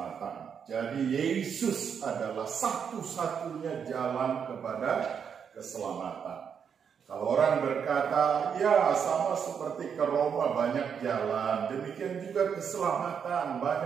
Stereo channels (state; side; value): quieter; left; 7.2 dB